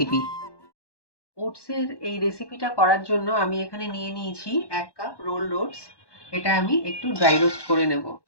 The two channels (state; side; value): late; right; 1.1 ms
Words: ওটসের এই রেসিপিটা করার জন্য আমি এখানে নিয়ে নিয়েছি 1 কাপ রোলড ওটস। এটা আমি একটু ড্রাই রোস্ট করে নেব।